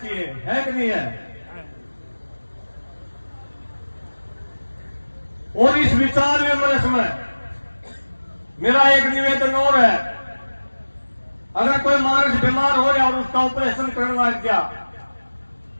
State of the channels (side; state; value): both; inverted; correlation -1.00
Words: है कि नहीं है? और इस विचार विमर्श में मेरा एक निवेदन और है, अगर कोई मानस बीमार हो रहा और उसका ऑपरेशन करना गया,